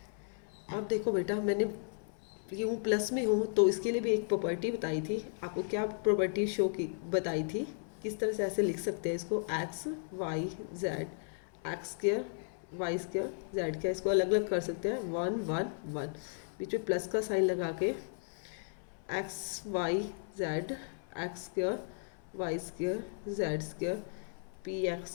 अब देखो बेटा मैंने यूँ प्लस में हूँ तो इसके लिए भी एक प्रॉपर्टी बताई थी आपको। क्या प्रॉपर्टी शो की बताई थी, किस तरह से ऐसे लिख सकते हैं इसको, X Y Z, X square Y square Z का, इसको अलग अलग कर सकते हैं 1 1 1, बीच में प्लस का साइन लगा के X Y Z X square Y square Z square P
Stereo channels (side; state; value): right; silent; 54 dB below the other